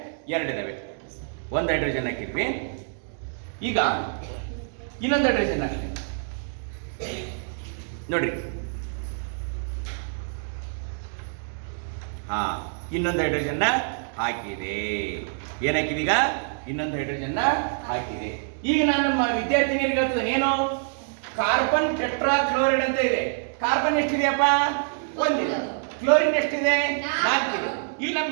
ಎರಡಿದಾವೆ. ಒಂದು ಹೈಡ್ರೋಜನ್ ಹಾಕಿದ್ವಿ. ಈಗ ಇನ್ನೊಂದು ಹೈಡ್ರೋಜನ್ ಹಾಕ್ತೀವಿ ನೋಡ್ರಿ. ಹಾ, ಇನ್ನೊಂದು ಹೈಡ್ರೋಜನ್ನ ಹಾಕಿದೆ. ಏನಾಕಿದೆ? ಈಗ ಇನ್ನೊಂದು ಹೈಡ್ರೋಜನ್ನ ಹಾಕಿದೆ. ಈಗ ನಾನು ನಮ್ಮ ವಿದ್ಯಾರ್ಥಿನಿಯರಿಗೆ ಹೇಳ್ತೇನೆ, ಏನು? ಕಾರ್ಬನ್ ಟೆಟ್ರಾ ಕ್ಲೋರೈಡ್ ಅಂತ ಇದೆ. ಕಾರ್ಬನ್ ಎಷ್ಟಿದೆಯಪ್ಪ? ಒಂದಿದೆ. ಕ್ಲೋರಿನ್ ಎಷ್ಟಿದೆ? ನಾಲ್ಕಿದೆ. ಇಲ್ಲಿ ನಮ್ಮ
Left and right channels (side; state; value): left; silent; digital silence